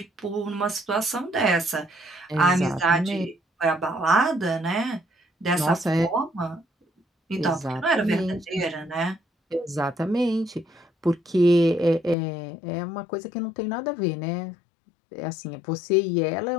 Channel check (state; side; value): drops out; right; at 12.2 s